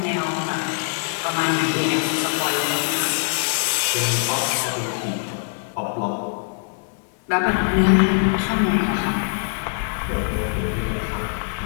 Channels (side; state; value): right; silent; digital silence